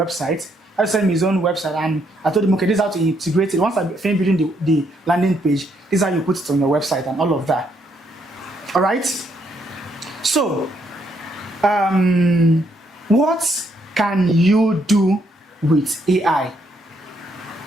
He had to send me his own website, and I told him, okay, this is how to integrate it. Once I finish building the landing page, this is how you put it on your website and all of that. All right. So, what can you do with AI?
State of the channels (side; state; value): both; normal; correlation 0.73